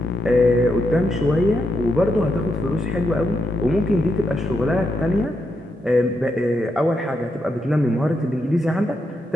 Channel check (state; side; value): normal; both; correlation 0.81